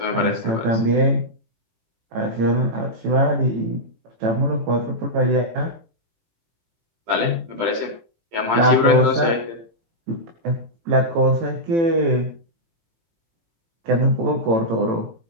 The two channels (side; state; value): left; late; 18 ms